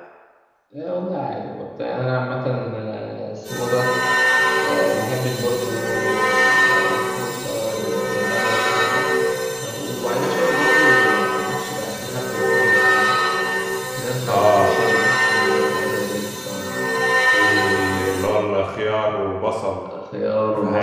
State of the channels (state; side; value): identical; both; correlation 1.00